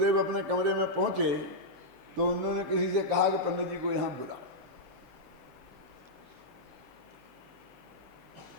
अपने कमरे में पहुंचे तो उन्होंने किसी से कहा कि पंडित जी को यहां बुलाओ।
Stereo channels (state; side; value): late; left; 7.2 ms